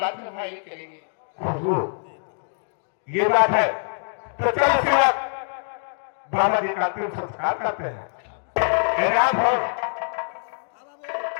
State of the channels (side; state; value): right; silent; digital silence